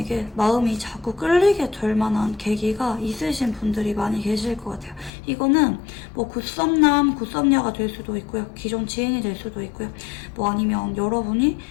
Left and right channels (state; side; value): drops out; right; at 5.1 s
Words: 마음이 자꾸 끌리게 될 만한 계기가 있으신 분들이 많이 계실 것 같아요. 이거는 굿썸남, 굿썸녀가 될 수도 있고요. 기존 지인이 될 수도 있고요. 아니면 여러분이